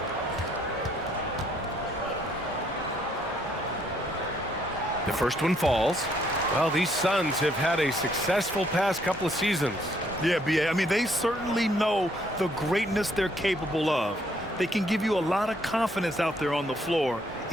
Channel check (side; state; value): both; normal; correlation 0.68